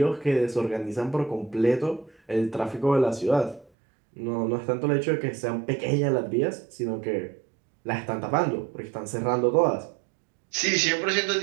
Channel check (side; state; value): left; drops out; at 3.7 s